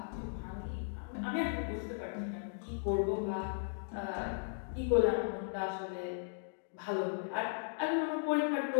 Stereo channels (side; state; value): right; silent; digital silence